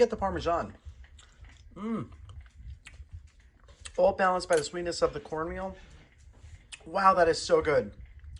the Parmesan. All balanced by the sweetness of the cornmeal. Wow, that is so good.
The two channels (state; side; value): identical; both; correlation 1.00